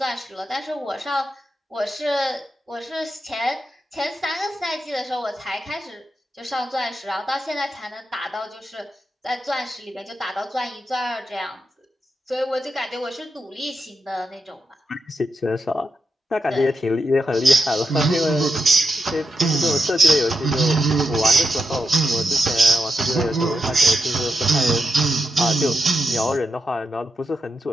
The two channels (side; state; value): both; normal; correlation 0.86